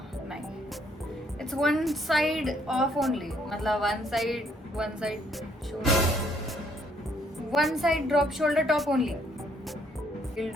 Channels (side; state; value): both; normal; correlation 0.68